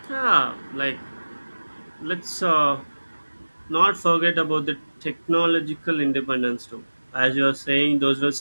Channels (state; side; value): inverted; both; correlation -1.00